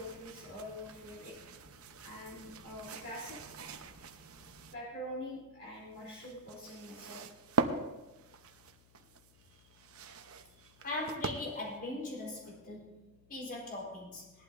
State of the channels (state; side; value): noise; left; hum, 24 dB below the sound